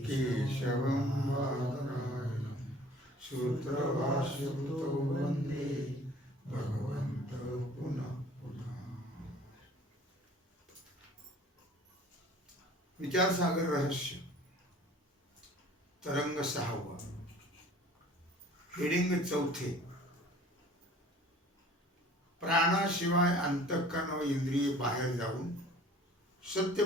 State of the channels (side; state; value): both; normal; correlation 0.50